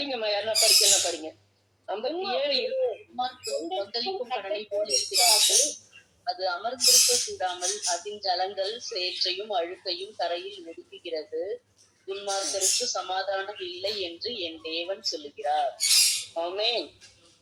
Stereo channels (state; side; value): identical; both; correlation 1.00